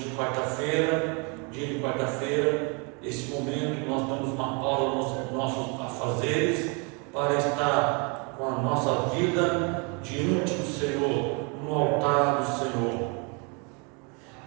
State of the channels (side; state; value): left; quieter; 33.2 dB